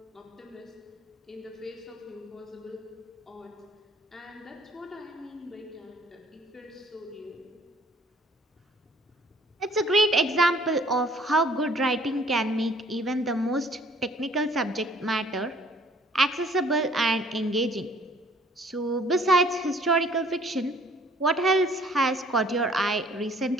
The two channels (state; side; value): normal; both; correlation 0.58